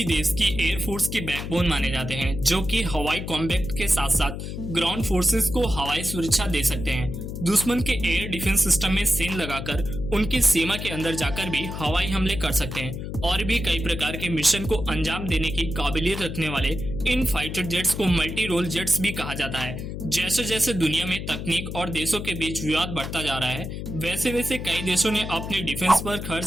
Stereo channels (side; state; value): left; noise; hum, 6 dB below the sound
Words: देश की एयरफोर्स की बैकबोन माने जाते हैं, जो कि हवाई कॉम्बैट के साथ साथ ग्राउंड फोर्सेस को हवाई सुरक्षा दे सकते हैं। दुश्मन के एयर डिफेंस सिस्टम में सेंध लगाकर उनकी सीमा के अंदर जाकर भी हवाई हमले कर सकते हैं और भी कई प्रकार के मिशन को अंजाम देने की काबिलियत रखने वाले इन फाइटर जेट्स को मल्टी रोल जेट्स भी कहा जाता है। जैसे जैसे दुनिया में तकनीक और देशों के बीच विवाद बढ़ता जा रहा है, वैसे वैसे कई देशों ने अपने डिफेंस पर